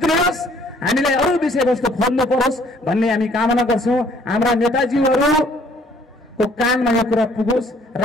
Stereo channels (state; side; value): normal; both; correlation 0.60